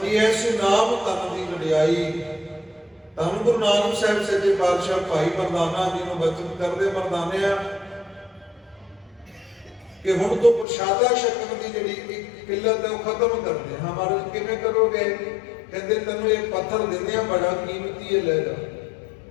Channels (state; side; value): drops out; right; at 10.7 s